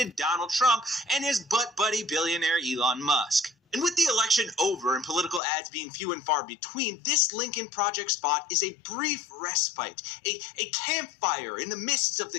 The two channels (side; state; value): right; drops out; at 5.4 s